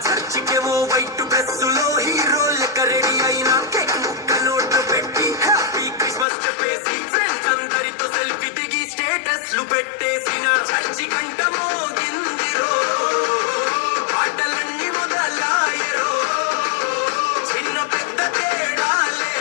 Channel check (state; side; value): drops out; right; at 6.2 s